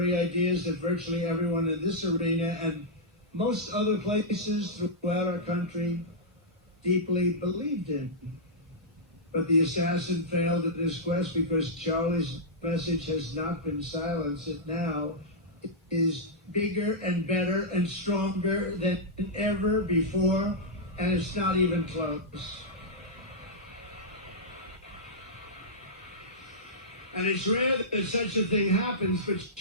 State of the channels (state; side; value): normal; both; correlation -0.10